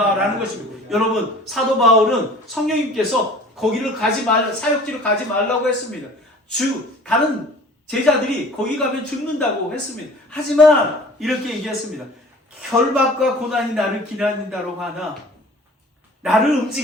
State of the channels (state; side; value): normal; both; correlation 0.46